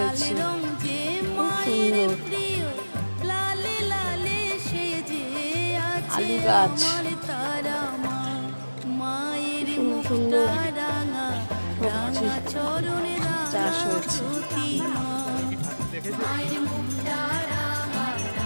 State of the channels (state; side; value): inverted; both; correlation -1.00